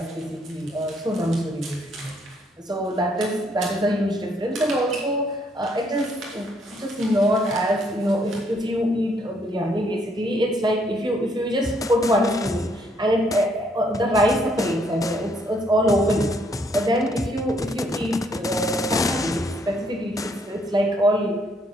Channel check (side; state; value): both; normal; correlation 0.69